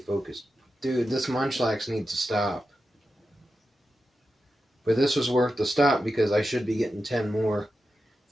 focused. Dude, this Munchlax needs to stop. But this was worth the stop because I should be getting 10 more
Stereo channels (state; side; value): normal; both; correlation 0.90